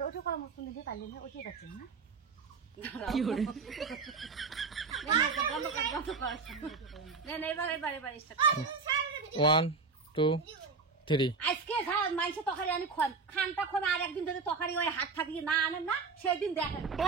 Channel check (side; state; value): left; quieter; 4.6 dB